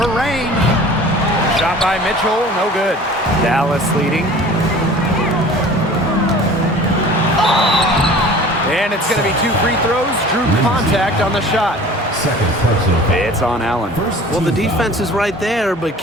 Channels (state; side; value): normal; both; correlation 0.44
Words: range. Shot by Mitchell, no good. Dallas leading. And it's going to be 2 free throws. Drew contact on the shot. Second personal foul. It's on Allen. Well, the defense is right there, but